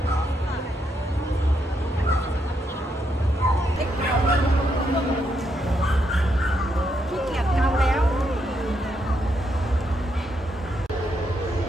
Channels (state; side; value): normal; both; correlation 0.78